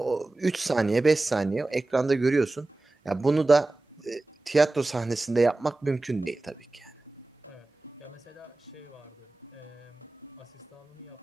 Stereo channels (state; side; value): quieter; left; 3.0 dB